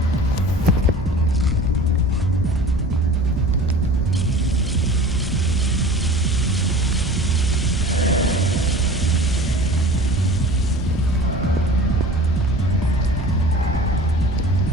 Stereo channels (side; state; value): both; normal; correlation 0.40